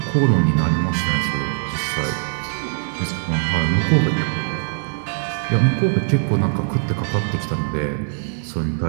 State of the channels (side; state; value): left; silent; 55 dB below the other